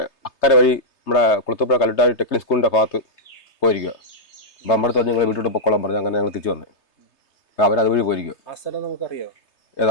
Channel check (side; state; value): right; late; 3.3 ms